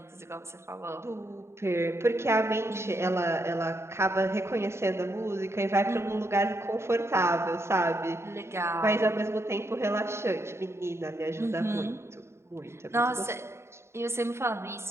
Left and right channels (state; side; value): late; left; 0.13 ms